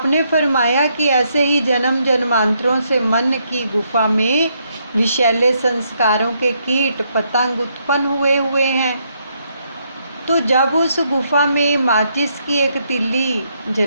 फरमाया कि ऐसे ही जन्म जन्मांतरों से मन की गुफा में विषैले संस्कारों के कीट पतंग उत्पन्न हुए हैं। तो जब उस गुफा में माचिस की एक तिल्ली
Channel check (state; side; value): inverted; both; correlation -0.75